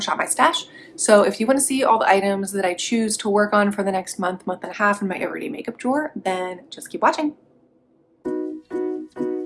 My Stash. So if you want to see all the items that I choose to work on for the next month, month and a half in my everyday makeup drawer, then just keep watching.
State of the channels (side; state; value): both; identical; correlation 1.00